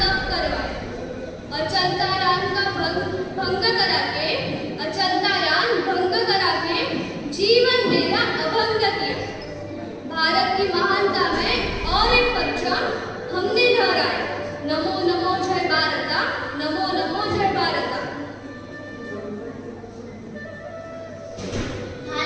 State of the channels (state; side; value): identical; both; correlation 1.00